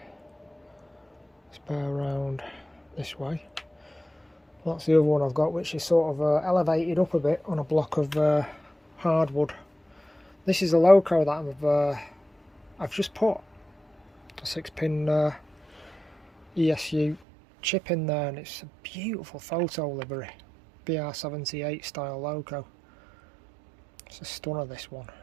let's bear around this way. That's the other one I've got, which is sort of elevated up a bit on a block of hardwood. This is a loco that I've just put a 6-pin ESU chip in there, and it's a beautiful photo livery, BR78 style loco. It's a stunner, this one, it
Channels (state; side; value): drops out; left; at 17.2 s